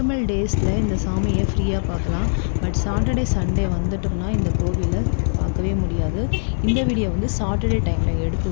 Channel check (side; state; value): right; silent; 59 dB below the other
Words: டேஸில் இந்த சாமியை ஃப்ரீயாக பார்க்கலாம். பட் சாட்டர்டே சண்டே வந்துட்டோம்னா இந்த கோவிலை பார்க்கவே முடியாது. இந்த வீடியோ வந்து சாட்டர்டே டைமில்